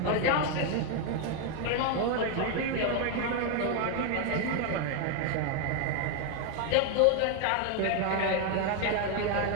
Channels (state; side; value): different; both; correlation 0.01